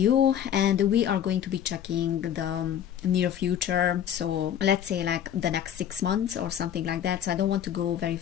And we are going to be checking the near future. So let's say like the next 6 months or something like that. So I don't want to go very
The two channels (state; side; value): quieter; right; 9.9 dB